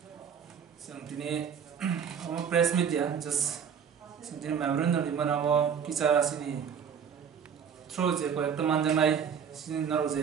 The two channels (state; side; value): quieter; left; 7.4 dB